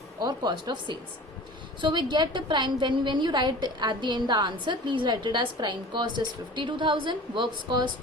or cost of sales. So we get the prime, when you write at the end the answer, please write it as prime cost is 52,000, works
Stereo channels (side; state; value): both; normal; correlation 0.40